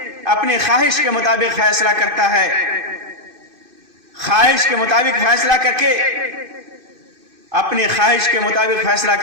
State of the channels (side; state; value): left; late; 2.5 ms